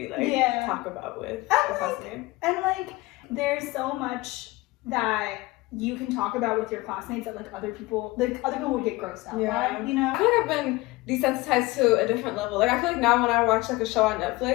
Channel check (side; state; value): right; quieter; 21.0 dB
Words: like Yeah. talk about with And a classmate. And like, there's so much that you can talk about with your classmates that like other people would get grossed out by, you know? I feel like I've been desensitized to a different level. Like I feel like now when I watch like a show on